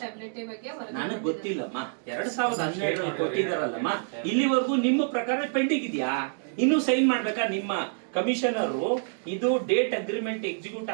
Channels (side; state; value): left; silent; digital silence